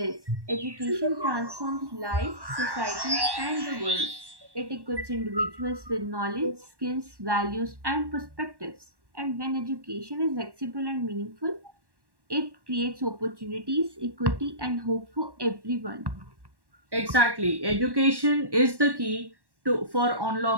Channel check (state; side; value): late; left; 1.1 ms